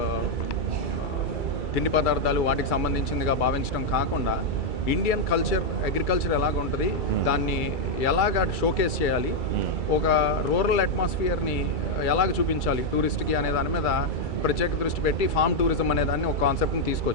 తిండి పదార్థాలు వాటికి సంబంధించిందిగా భావించడం కాకుండా ఇండియన్ కల్చర్, అగ్రికల్చర్ ఎలాగ ఉంటుంది, దాన్ని ఎలాగ షోకేస్ చేయాలి, ఒక రూరల్ అట్మాస్ఫియర్ని ఎలాగ చూపించాలి టూరిస్ట్కి అనే దాని మీద ప్రత్యేక దృష్టి పెట్టి ఫార్మ్ టూరిజం అనే దాన్ని ఒక కాన్సెప్ట్ని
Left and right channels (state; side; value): late; right; 2.3 ms